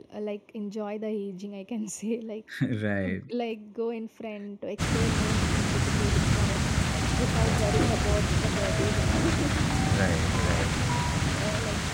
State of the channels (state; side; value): identical; both; correlation 1.00